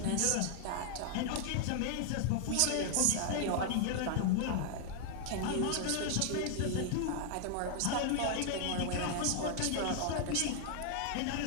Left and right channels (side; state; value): both; different; correlation 0.00